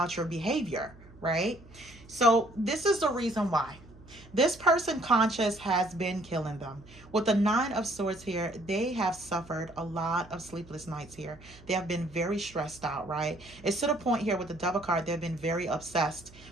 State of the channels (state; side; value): noise; right; hum, 22 dB below the sound